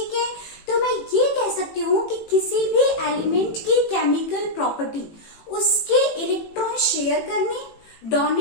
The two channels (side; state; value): right; late; 18 ms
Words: है, तो मैं ये कह सकती हूँ कि किसी भी एलिमेंट की केमिकल प्रॉपर्टी उसके इलेक्ट्रॉन शेयर करने,